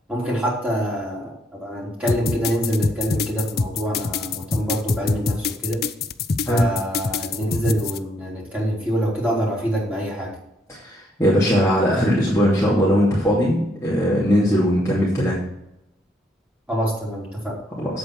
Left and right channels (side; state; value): both; normal; correlation 0.72